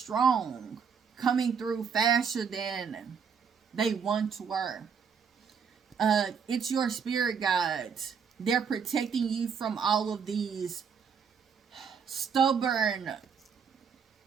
Coming through faster than they once were. It's your spirit guides. They're protecting you from all of these stubborn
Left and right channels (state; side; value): quieter; left; 6.5 dB